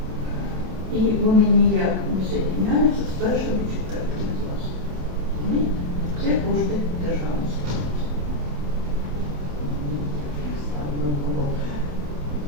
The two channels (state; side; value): late; left; 27 ms